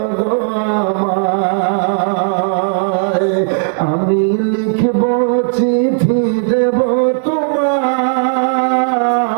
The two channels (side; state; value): left; silent; digital silence